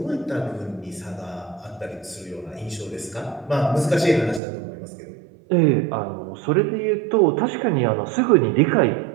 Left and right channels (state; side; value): drops out; left; at 4.4 s